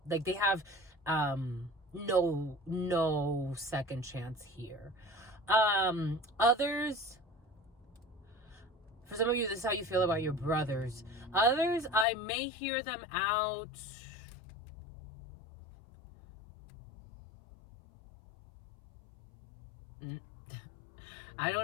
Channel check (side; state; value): right; drops out; at 12.1 s